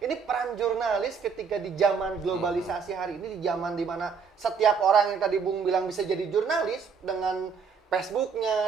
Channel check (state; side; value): quieter; left; 5.9 dB